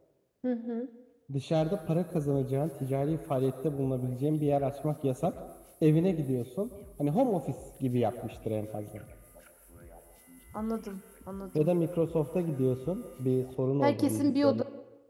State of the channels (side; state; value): both; identical; correlation 1.00